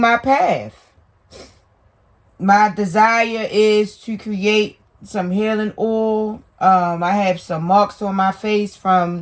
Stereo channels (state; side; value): identical; both; correlation 1.00